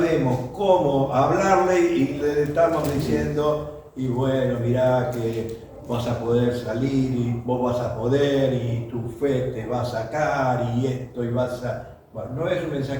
cómo hablarle y le estamos diciendo, y bueno, mirá que vas a poder salir y vos vas a poder y tu fe te va a sacar y esto y vas a... Bueno, no es un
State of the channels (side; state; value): both; identical; correlation 1.00